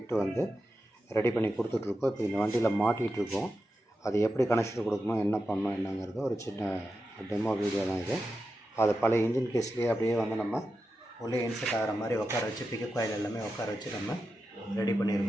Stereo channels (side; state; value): both; normal; correlation 0.90